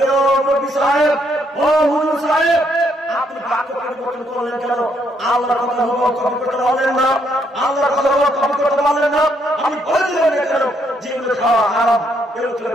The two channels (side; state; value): both; normal; correlation 0.73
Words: ও মুফতি সাহেব, ও হুজুর সাহেব, আপনি বাক্য পরিবর্তন করলেন কেন? আল্লাহর কথা কপি করতে পারলেন না, আল্লাহর কথা কপি করতে পারলেন না, আমি বলে দিলেন না কেন যেগুলো খাওয়া হারাম, এগুলো